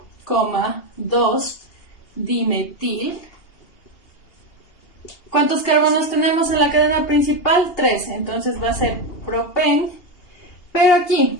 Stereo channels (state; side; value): late; right; 2.8 ms